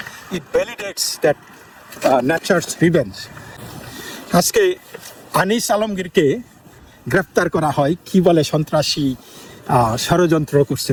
ইট ভ্যালিডেটস দ্যাট ন্যাচারস রিভেঞ্জ। আজকে আনিস আলমগীরকে গ্রেফতার করা হয়, কি বলে সন্ত্রাসী ষড়যন্ত্র করছে,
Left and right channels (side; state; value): both; identical; correlation 1.00